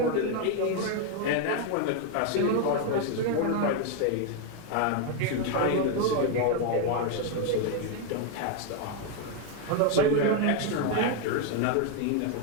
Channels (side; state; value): both; different; correlation 0.01